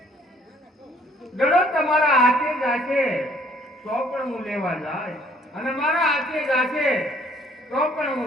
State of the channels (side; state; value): both; normal; correlation 0.61